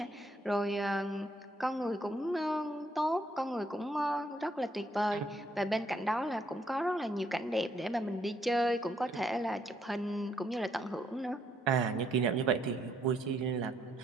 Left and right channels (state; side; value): normal; both; correlation 0.72